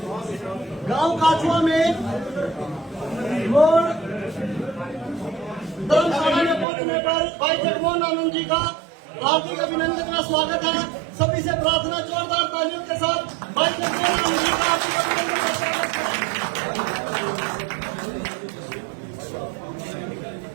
गांव काठुआ में रोड धर्मशाला में पहुंचने पर भाई जगमोहन आनंद जी का हार्दिक अभिनंदन का स्वागत है। सभी से प्रार्थना जोरदार तालियों के साथ भाई जगमोहन आनंद जी का हार्दिक अभिनंदन का स्वागत करें।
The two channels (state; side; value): drops out; left; at 6.7 s